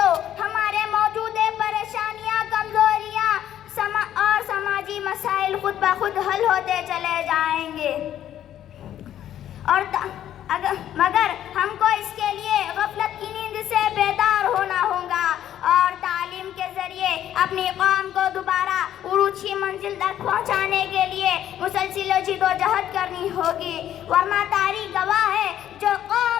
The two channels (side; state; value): right; quieter; 11.3 dB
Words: ہمارے موجودہ پریشانیاں، کمزوریاں اور سماجی مسائل خود بخود حل ہوتے چلے جائیں گے. مگر ہم کو اس کے لیے غفلت کی نیند سے بیدار ہونا ہوگا اور تعلیم کے ذریعے اپنی قوم کو دوبارہ عروج کی منزل تک پہنچانے کے لیے مسلسل جدوجہد کرنی ہوگی. ورنہ تاریخ گواہ ہے جو